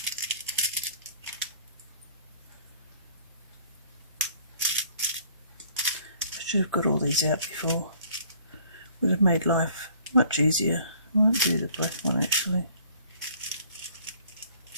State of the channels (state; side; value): inverted; both; correlation -0.56